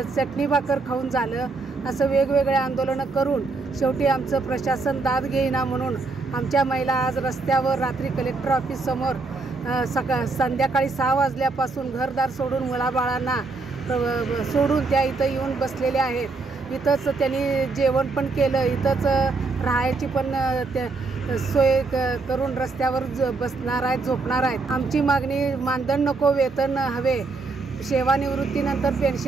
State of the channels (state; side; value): quieter; left; 3.9 dB